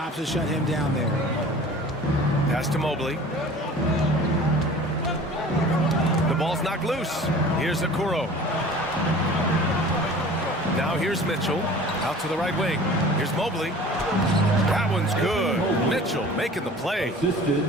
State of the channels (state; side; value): normal; both; correlation 0.44